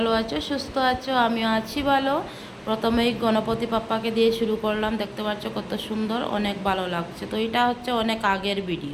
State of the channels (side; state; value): both; identical; correlation 1.00